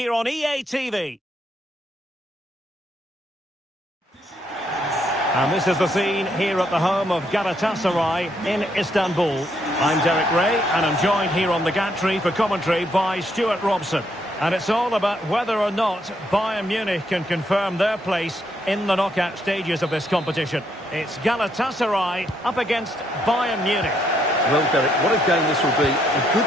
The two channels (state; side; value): normal; both; correlation 0.74